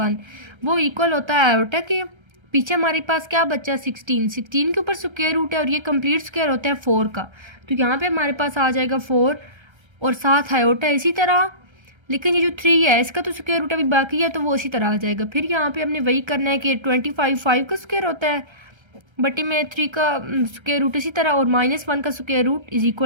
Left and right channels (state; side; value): late; left; 1.3 ms